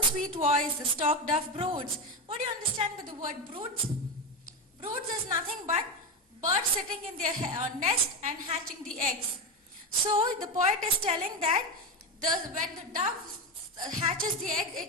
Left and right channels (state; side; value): normal; both; correlation 0.14